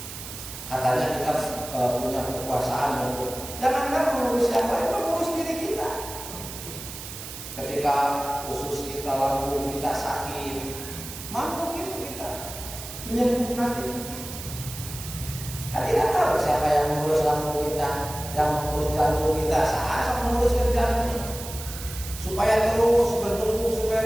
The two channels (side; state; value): right; noise; hiss, 11 dB below the sound